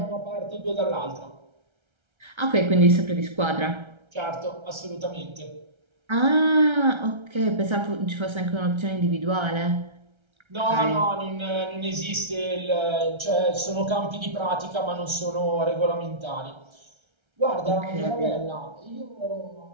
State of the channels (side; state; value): left; late; 1.3 ms